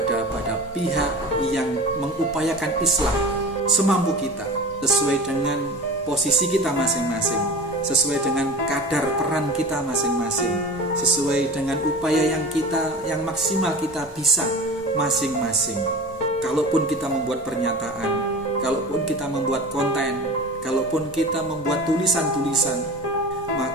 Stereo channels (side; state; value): both; normal; correlation 0.35